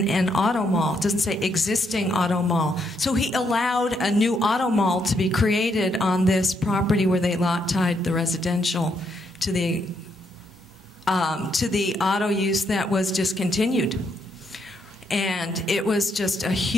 an auto mall. It doesn't say existing auto mall. So he allowed a new auto mall to be created on this property where they lot tied the residential to the auto use that was discontinued. And it was just a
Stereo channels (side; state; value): both; normal; correlation 0.76